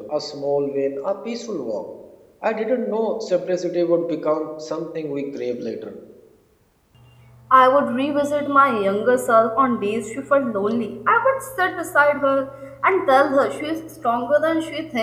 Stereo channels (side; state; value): both; identical; correlation 1.00